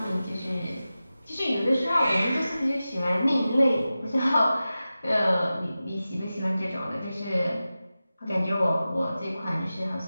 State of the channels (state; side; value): inverted; both; correlation -0.94